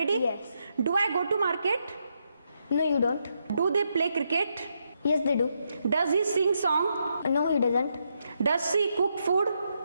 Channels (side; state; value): both; inverted; correlation -0.80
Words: Yes. Do I go to market? No, you don't. Do they play cricket? Yes, they do. Does he sing song? No, he doesn't. Does she cook food?